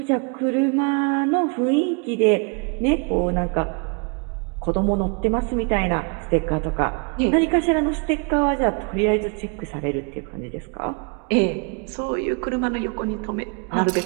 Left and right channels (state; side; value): quieter; left; 34.6 dB